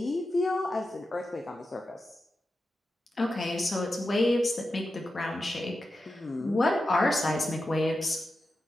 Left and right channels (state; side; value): normal; both; correlation 0.91